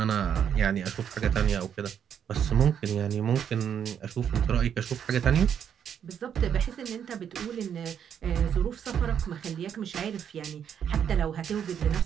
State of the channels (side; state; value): left; quieter; 8.5 dB